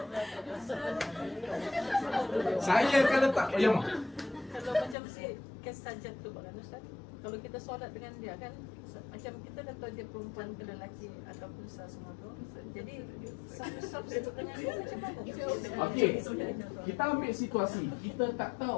Saya kalau tak ya mak. Kalau macam si kesajat tu Pak Ustaz, kalau kita solat dengan dia kan macam kita dah tahu dia perempuan ke lelaki ataupun semua tu. Jadi satu dengan dia macam mana? Okey. Kita ambil situasi. Kita tak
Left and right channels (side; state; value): right; drops out; at 5.0 s